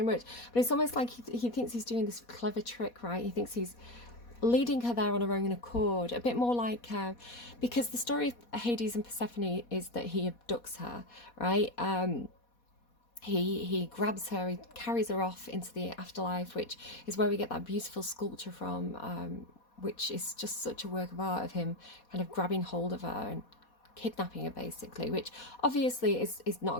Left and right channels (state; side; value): late; right; 4.2 ms